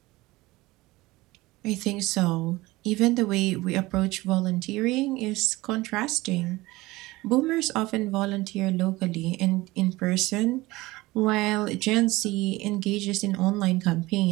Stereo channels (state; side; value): quieter; left; 19.9 dB